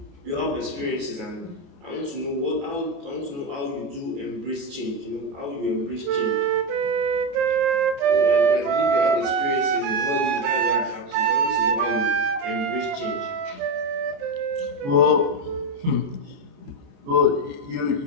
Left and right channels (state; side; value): late; left; 28 ms